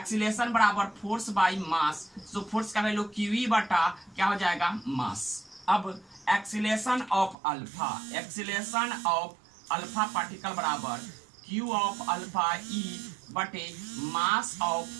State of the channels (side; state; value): left; drops out; at 7.4 s